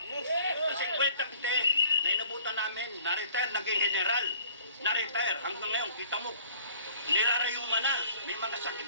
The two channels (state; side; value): inverted; both; correlation -0.54